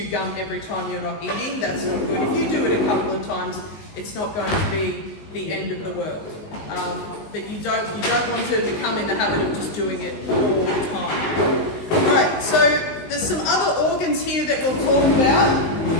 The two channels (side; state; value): right; late; 19 ms